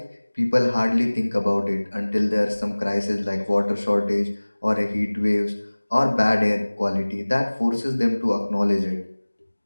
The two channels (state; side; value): inverted; both; correlation -1.00